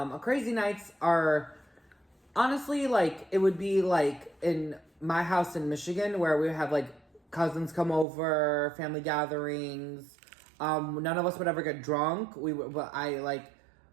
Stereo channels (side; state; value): left; drops out; at 8.1 s